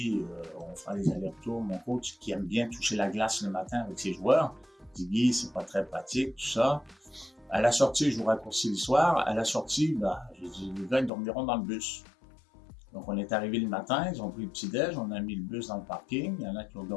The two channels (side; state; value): right; drops out; at 11.1 s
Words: on fera les allers-retours. Mon coach, qui aime bien toucher la glace le matin avec ses joueurs, dit Guy, c'est pas très pratique, tout ça. À la sortie, je vous raccourcis l'histoire. À la sortie, j'ai dit, les gars, ils dormiront dans le bus. Donc, on est arrivé le matin, ils ont pris le petit-déj, on a mis le bus dans le parking. Il y en a qui ont